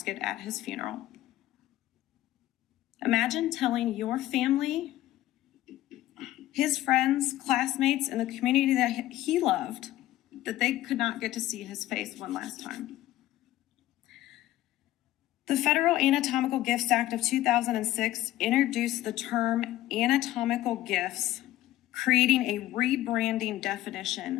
at his funeral. Imagine telling your family, his friends, classmates, and the community that he loved that they could not get to see his face one last time. The Federal Anatomical Gifts Act of 2006 introduced the term anatomical gifts, creating a rebranding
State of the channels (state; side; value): quieter; right; 14.9 dB